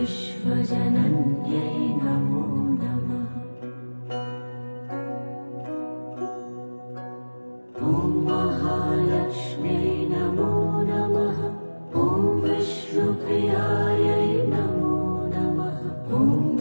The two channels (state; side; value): inverted; both; correlation -1.00